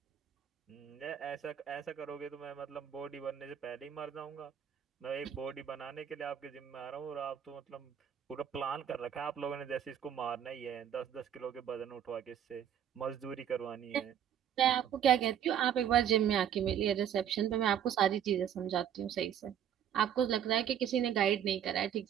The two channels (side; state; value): left; quieter; 9.5 dB